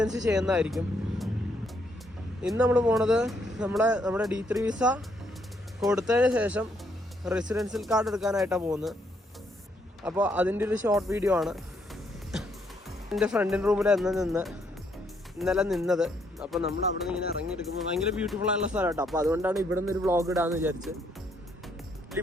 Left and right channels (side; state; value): both; normal; correlation 0.72